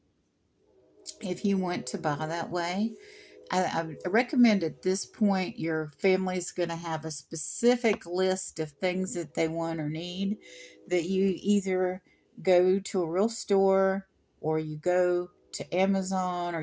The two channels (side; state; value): both; identical; correlation 1.00